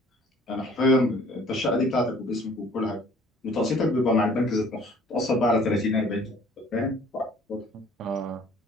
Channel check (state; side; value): normal; both; correlation 0.54